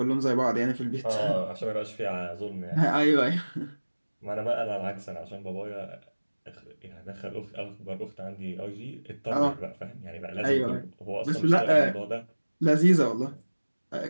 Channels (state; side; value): inverted; both; correlation -1.00